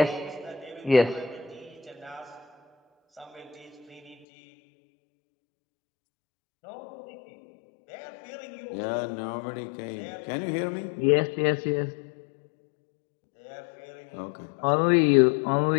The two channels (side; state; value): right; drops out; at 4.2 s